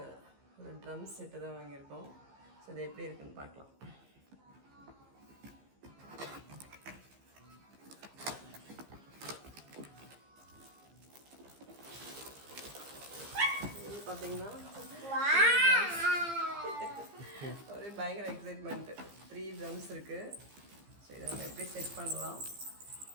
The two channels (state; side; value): late; left; 15 ms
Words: ஒரு ட்ரம் செட்டு தான் வாங்கியிருக்கோம். ஸோ இது எப்படி இருக்குன்னு பார்க்கலாம். இது பார்த்தீங்கன்னா ஒரே பயங்கர எக்ஸைட்மெண்ட்டு. 3 ட்ரம்ஸ் இருக்குது. ஸோ இதை நம்ம எப்படி செட் பண்ணலாம்,